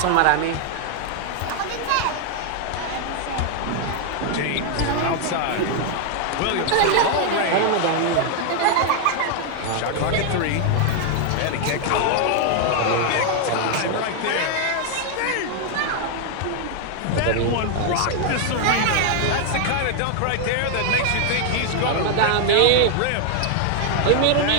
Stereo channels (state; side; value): different; both; correlation 0.00